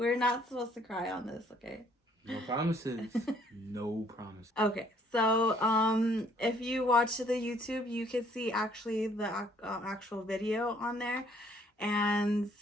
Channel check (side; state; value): both; normal; correlation 0.63